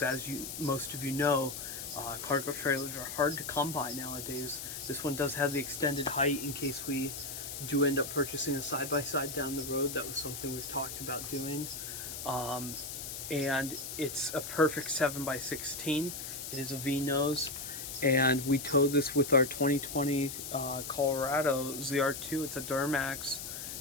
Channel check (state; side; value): noise; left; hiss, 7 dB below the sound